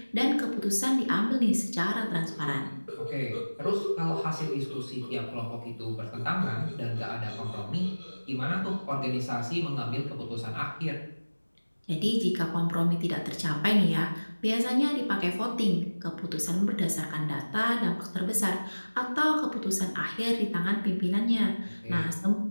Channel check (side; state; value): both; inverted; correlation -1.00